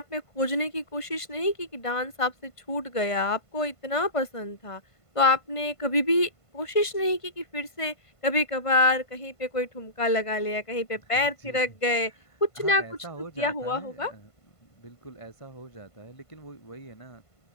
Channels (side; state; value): right; late; 1.5 ms